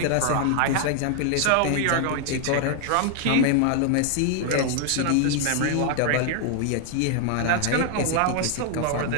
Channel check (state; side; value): different; both; correlation 0.00